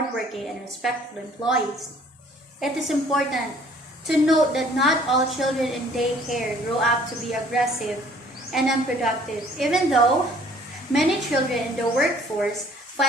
and respectful employees. It is important to note that not all children in daycare grow up to be aggressive and unproductive, even though many children in the workforce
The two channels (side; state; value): both; normal; correlation 0.56